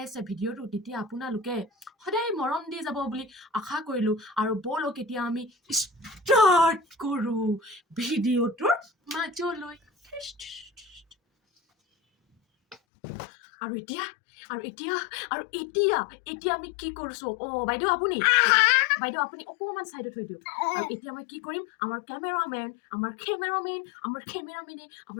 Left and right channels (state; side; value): drops out; right; at 12.8 s